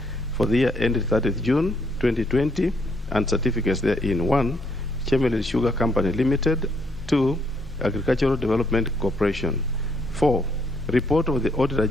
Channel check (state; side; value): normal; both; correlation 0.72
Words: for the year ended 30th June 2020 and certificates therein. 1. Chemelil Sugar Company Limited. 2. Agricultural Development Corporation. 4. Report of the Auditor